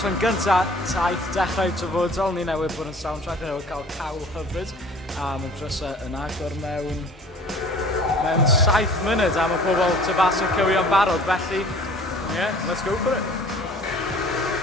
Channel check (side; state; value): both; normal; correlation 0.49